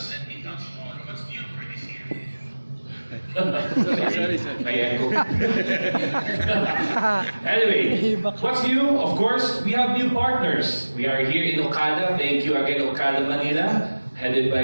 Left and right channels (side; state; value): both; inverted; correlation -1.00